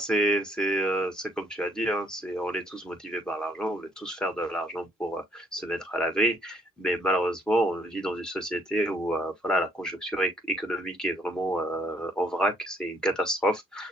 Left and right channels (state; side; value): normal; both; correlation 0.67